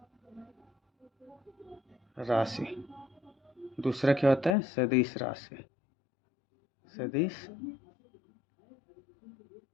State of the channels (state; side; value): drops out; right; at 4.5 s